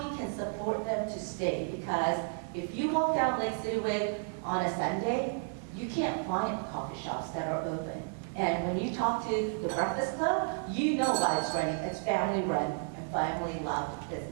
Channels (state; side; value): silent; left; 56 dB below the other